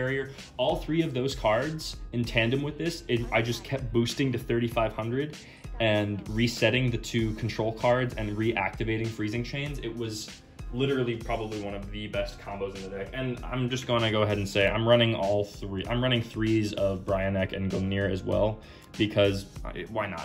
all 3 of those cards in tandem with this, I just kept boosting to 3,500 and resetting the 2 control cards and reactivating Freezing Chains. It was literally probably one of the best combos in the deck. And I'm just going to go ahead and say I'm running all 3. I'm running 3s of Brionek and Gungnir as well, because why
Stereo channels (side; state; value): both; identical; correlation 1.00